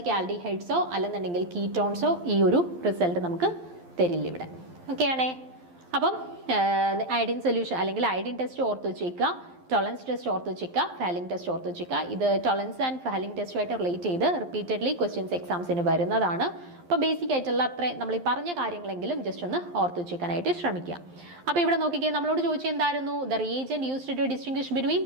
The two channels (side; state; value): left; late; 11 ms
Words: ആൽഡിഹൈഡ്സോ അല്ലെന്നുണ്ടെങ്കിൽ കീറ്റോൺസോ ഈ ഒരു റിസൾട്ട് നമുക്ക് തരില്ല ഇവിടെ. ഓക്കെ ആണേ. അപ്പം അയഡിൻ സൊല്യൂഷൻ അല്ലെങ്കിൽ അയഡിൻ ടെസ്റ്റ് ഓർത്ത് വെച്ചേക്കുക, ടോളറൻസ് ടെസ്റ്റ് ഓർത്ത് വെച്ചേക്കുക, ഫെലിംഗ് ടെസ്റ്റ് ഓർത്ത് വെച്ചേക്കുക. ഇത് ടോളറൻസ് ആൻഡ് ഫെലിംഗ് ടെസ്റ്റുമായിട്ട് റിലേറ്റ് ചെയ്ത് റിപ്പീറ്റഡ്ലി ക്വസ്റ്റ്യൻസ് എക്സാംസിന് വരുന്നതാണ്. അപ്പോൾ ബേസിക് ആയിട്ടുള്ള അത്രയും നമ്മൾ ഈ പറഞ്ഞ കാര്യങ്ങളെങ്കിലും ജസ്റ്റ് ഒന്ന് ഓർത്ത് വെച്ചേക്കാനായിട്ട് ശ്രമിക്കുക. അപ്പോൾ ഇവിടെ നോക്കിക്കേ, നമ്മളോട് ചോദിച്ചത് എന്തായിരുന്നു? The reagent used to distinguish between